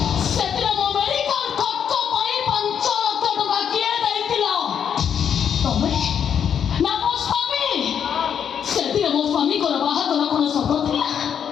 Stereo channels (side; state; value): right; quieter; 8.1 dB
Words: ସେଥିରେ ମୋ ମେଡିକାଲ ଖର୍ଚ୍ଚ ପାଇଁ 5 ଲକ୍ଷ ଟଙ୍କା କିଏ ଦେଇଥିଲା? ତମେ ନା ମୋ ସ୍ୱାମୀ? ସେଥିରେ ମୋ ସ୍ୱାମୀଙ୍କର ବାହାଘର କଣ ସତ ଥିଲା?